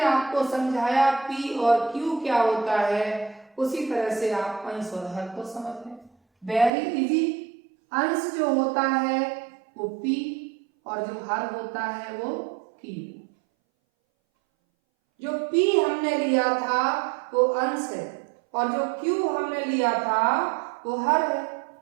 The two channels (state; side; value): drops out; left; at 6.7 s